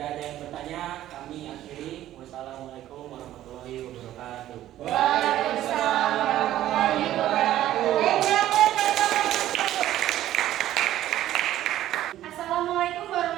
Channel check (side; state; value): left; quieter; 13.3 dB